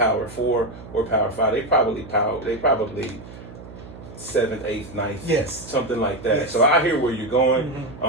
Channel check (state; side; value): noise; right; hum, 16 dB below the sound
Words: 4 or Power 5. They probably 7th, 8th, 9th, something like that. Yes. So I hear where you're going,